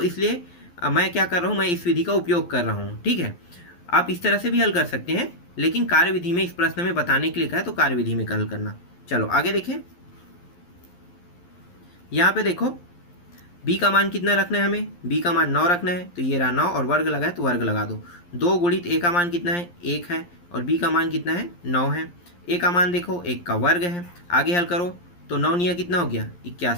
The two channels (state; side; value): late; right; 11 ms